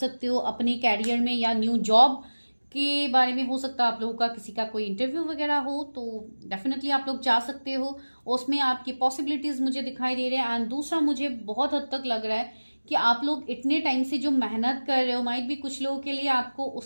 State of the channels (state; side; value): inverted; both; correlation -1.00